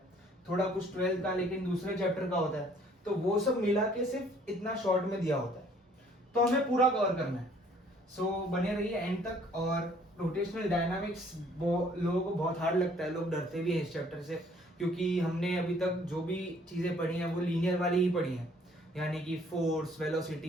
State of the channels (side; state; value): both; normal; correlation 0.59